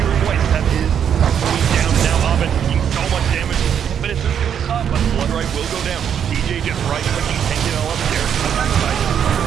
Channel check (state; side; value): quieter; left; 8.5 dB